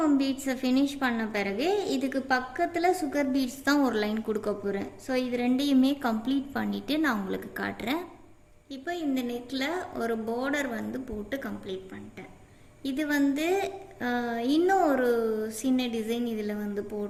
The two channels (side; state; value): both; identical; correlation 1.00